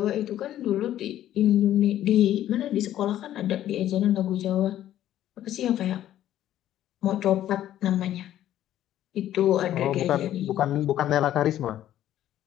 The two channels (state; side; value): quieter; right; 12.3 dB